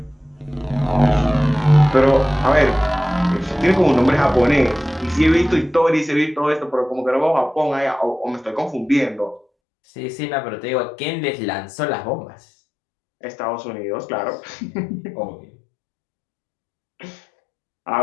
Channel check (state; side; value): drops out; right; at 9.5 s